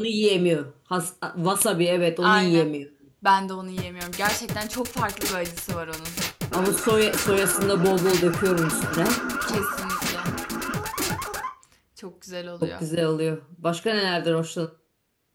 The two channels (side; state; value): both; identical; correlation 1.00